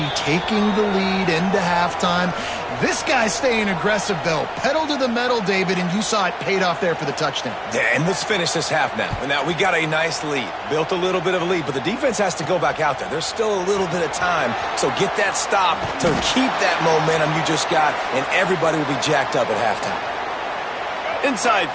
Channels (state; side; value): identical; both; correlation 1.00